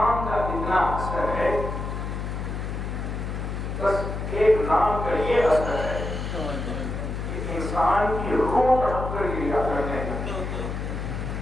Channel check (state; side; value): noise; left; hum, 4 dB below the sound